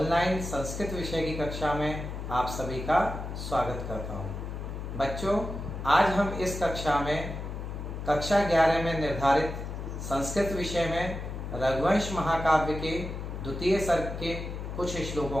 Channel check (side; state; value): left; noise; hum, 6 dB below the sound